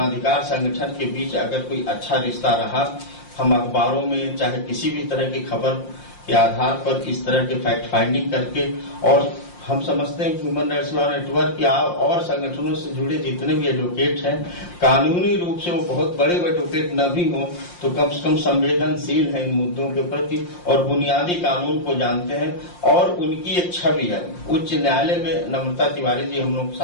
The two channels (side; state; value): right; late; 5.7 ms